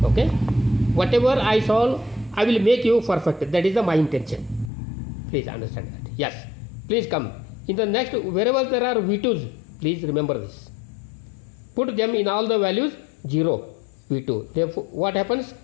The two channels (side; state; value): right; drops out; at 4.7 s